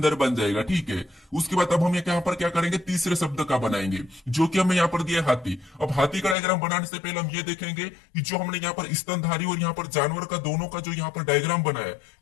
बन जाएगा। ठीक है, उसके बाद अब हम यहाँ पर क्या करेंगे, तीसरे शब्द का बनाएंगे जो कि हमें यहाँ पर दिया हाथी। अब हाथी का डायग्राम बनाने से पहले हम ये देखेंगे कि जो हमने यहाँ पर स्तनधारी और यहाँ पर जानवर का दोनों का जो यहाँ पर डायग्राम बनाया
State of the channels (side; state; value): right; drops out; at 6.4 s